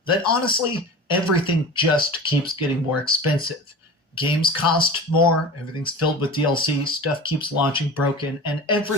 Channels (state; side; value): normal; both; correlation 0.35